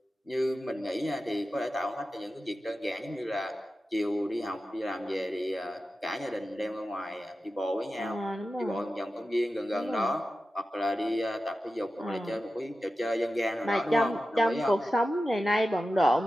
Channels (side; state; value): both; normal; correlation 0.93